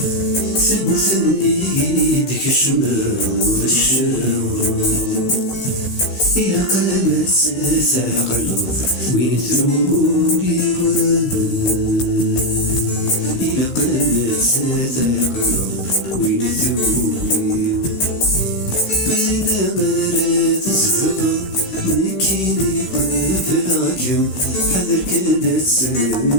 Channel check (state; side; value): late; right; 16 ms